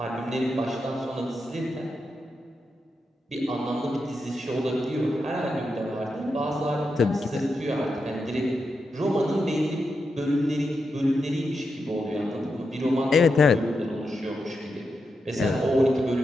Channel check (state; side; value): normal; both; correlation 0.86